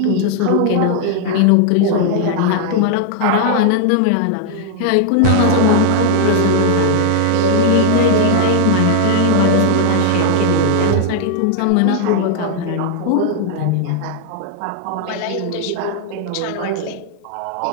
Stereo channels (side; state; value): both; different; correlation 0.00